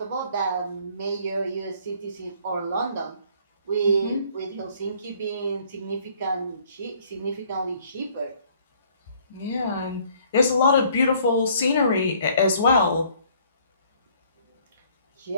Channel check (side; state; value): both; inverted; correlation -0.60